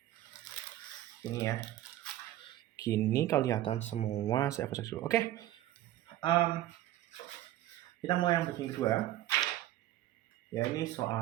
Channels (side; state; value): left; quieter; 14.2 dB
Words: ini ya. Gini kelihatan semua. Saya cek dulu. Oke, kita mulai yang bagian kedua. Ya, ini